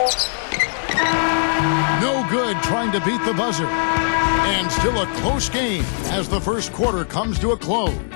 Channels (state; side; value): silent; right; digital silence